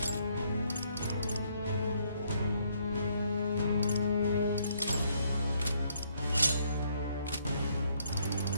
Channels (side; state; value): both; inverted; correlation -0.70